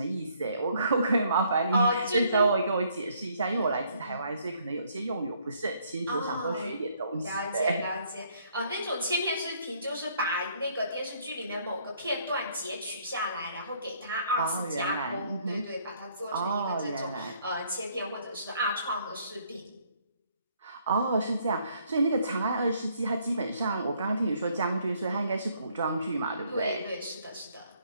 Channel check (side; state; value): both; inverted; correlation -0.66